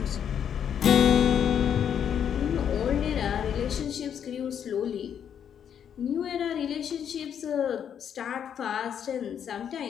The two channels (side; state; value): right; quieter; 8.6 dB